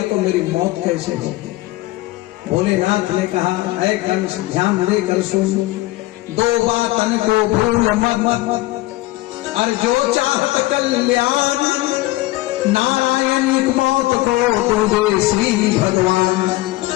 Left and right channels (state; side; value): quieter; right; 19.0 dB